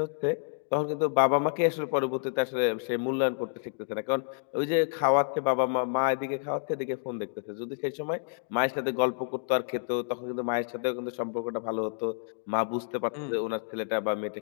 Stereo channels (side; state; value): right; silent; digital silence